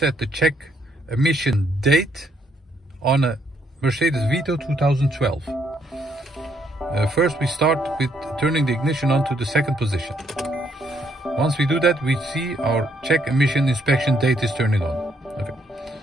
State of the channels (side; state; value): both; normal; correlation 0.71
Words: the check emission date on a Mercedes Vito 2012. First we start with turning the ignition on to the second position. Once we do that, we see our check emission inspection date is turning on. Okay.